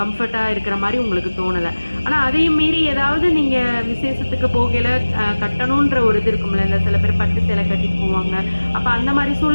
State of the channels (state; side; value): inverted; both; correlation -1.00